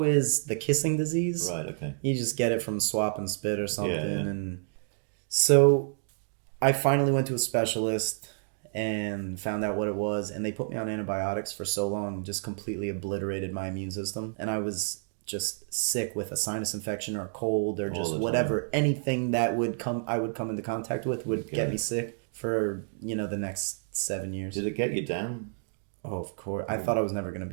is the kissing disease. Right, okay. You just get it from swap and spit or something. Yeah. And so I finally went to a specialist and found out what it was, and they put me on antibiotics for so long, just completely obliterated my immune system. And I was just sick with a sinus infection or a cold or just whatever, anything that I would come into contact with would get me sick for, the next 7 years. Did it get you down? Oh, of course. I thought I was never going to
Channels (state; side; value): silent; left; digital silence